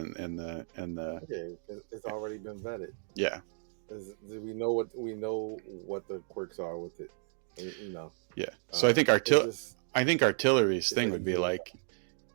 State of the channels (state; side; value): silent; left; digital silence